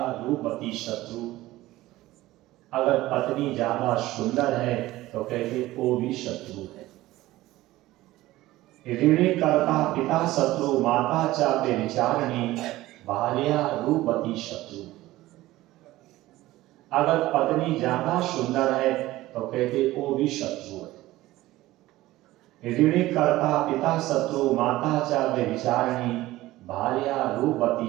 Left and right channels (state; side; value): quieter; left; 17.0 dB